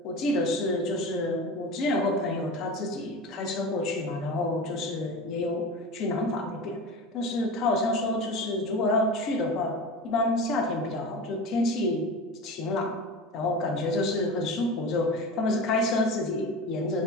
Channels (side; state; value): both; normal; correlation 0.30